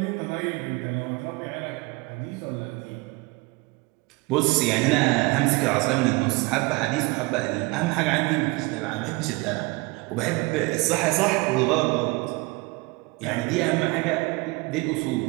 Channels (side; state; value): left; quieter; 25.1 dB